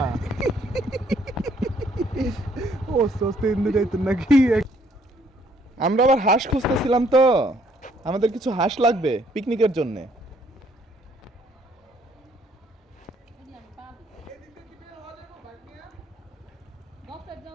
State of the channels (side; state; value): both; normal; correlation 0.66